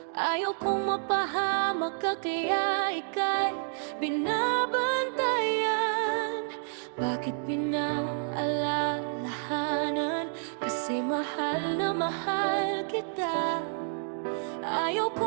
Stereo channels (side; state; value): left; silent; digital silence